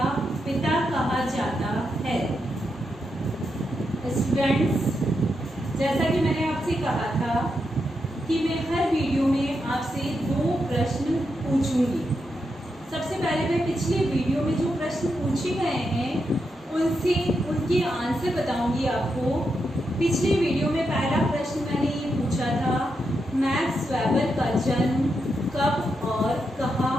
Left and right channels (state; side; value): normal; both; correlation 0.84